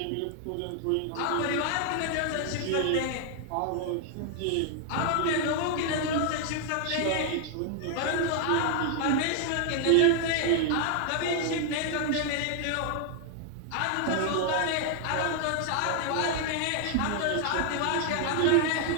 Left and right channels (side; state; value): both; different; correlation 0.00